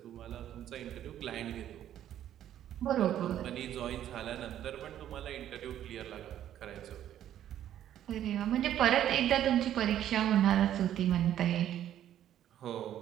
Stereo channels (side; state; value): left; quieter; 11.3 dB